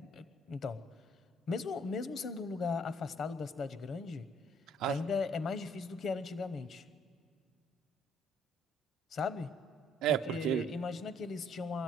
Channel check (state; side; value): normal; both; correlation 0.63